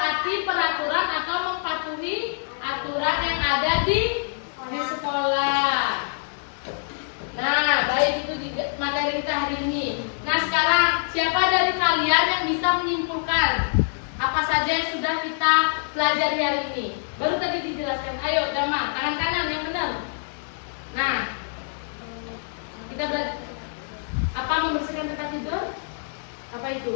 pelajari hari ini. Baru tadi dijelaskan. Ayo, Dama, tangan kanan yang benar. Nah, kita belajar apa membersihkan tempat tidur? Apa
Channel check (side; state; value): right; silent; digital silence